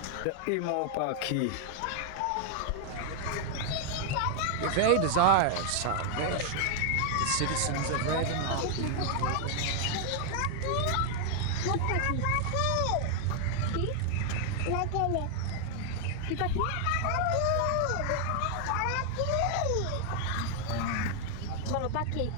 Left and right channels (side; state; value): both; different; correlation 0.00